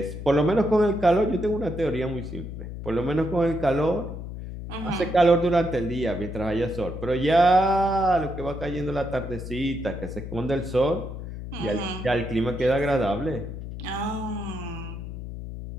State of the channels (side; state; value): left; noise; hum, 9 dB below the sound